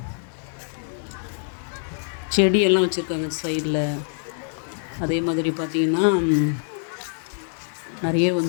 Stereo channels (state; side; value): silent; right; 62 dB below the other